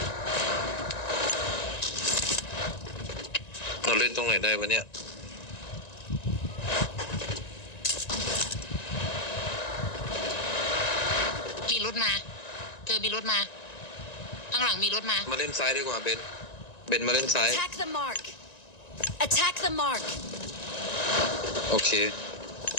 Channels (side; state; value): right; late; 1.9 ms